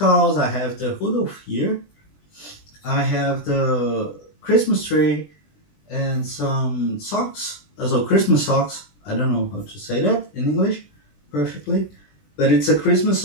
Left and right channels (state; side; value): late; right; 20 ms